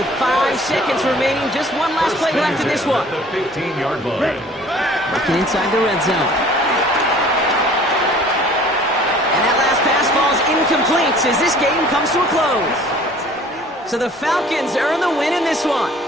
5 seconds remaining, just one last play left in this one. The 15-yard line. Looking inside the red zone. And that last pass falls incomplete as this game comes to a close. So the Falcons earn the win in this one.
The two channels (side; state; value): both; normal; correlation 0.51